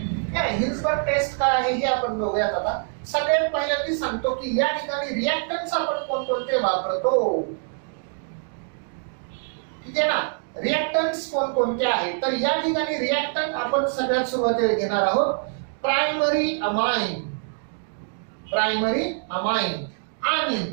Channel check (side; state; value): left; silent; 62 dB below the other